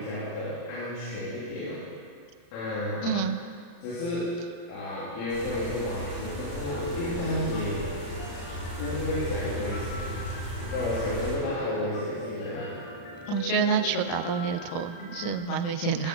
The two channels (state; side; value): late; right; 35 ms